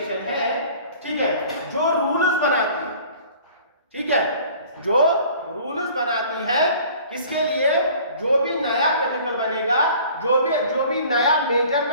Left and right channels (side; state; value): both; inverted; correlation -0.49